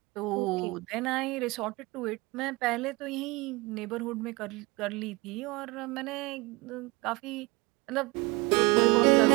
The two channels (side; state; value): left; quieter; 24.7 dB